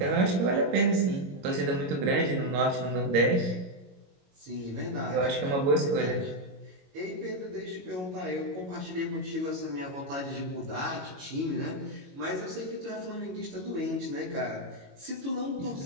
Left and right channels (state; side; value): late; left; 22 ms